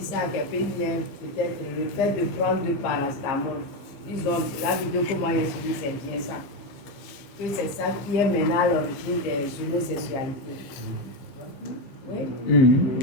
ça à quelqu'un, peut-être le fait de prendre du paracétamol, disons, la vidéo que moi j'ai suivi, c'est bien ça. Que c'est ça qui est maintenant à l'origine des homosexualités. Oui?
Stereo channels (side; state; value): right; late; 15 ms